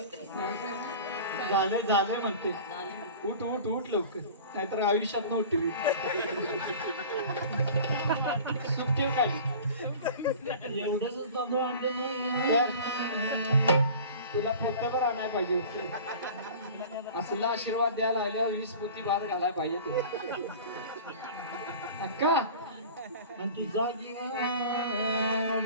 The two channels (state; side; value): inverted; both; correlation -0.40